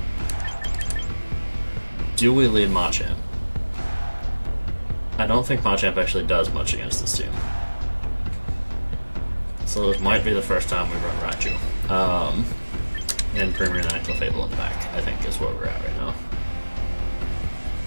Do we lead Machamp? I don't think Machamp actually does much against this team. So this might be the first time we run Raichu. And Primarina and Clefable in the back, I think is where we're at right now.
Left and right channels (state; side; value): inverted; both; correlation -1.00